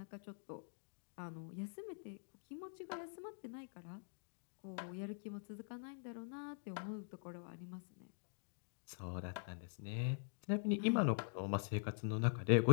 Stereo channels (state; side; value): silent; right; digital silence